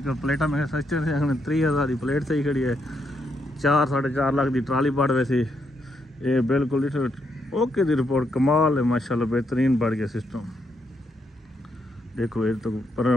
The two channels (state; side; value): normal; both; correlation 0.78